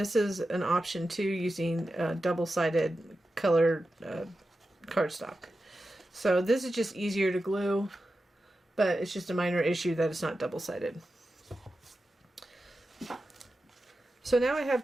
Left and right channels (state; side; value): normal; both; correlation 0.92